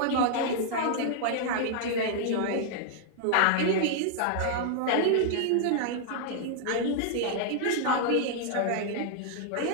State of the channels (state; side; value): different; both; correlation -0.01